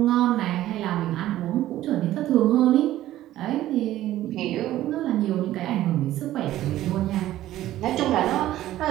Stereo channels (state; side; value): quieter; left; 14.1 dB